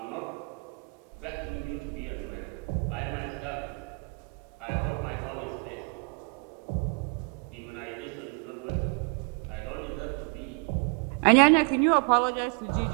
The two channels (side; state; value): left; quieter; 34.8 dB